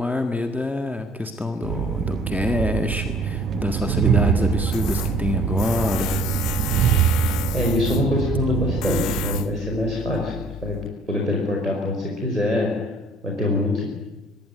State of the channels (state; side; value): normal; both; correlation 0.55